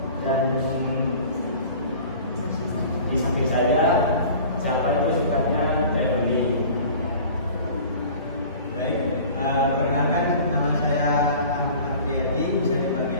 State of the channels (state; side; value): inverted; both; correlation -0.44